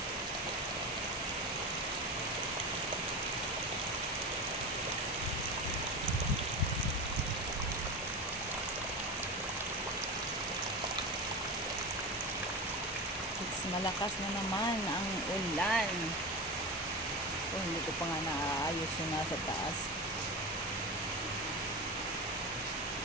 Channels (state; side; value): normal; both; correlation 0.24